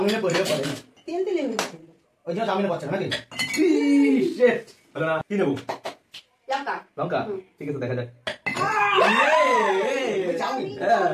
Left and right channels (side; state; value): both; identical; correlation 1.00